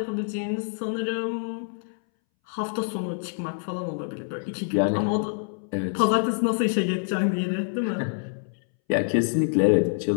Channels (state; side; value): silent; right; 61 dB below the other